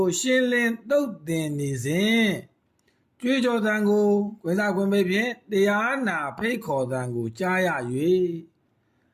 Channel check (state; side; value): identical; both; correlation 1.00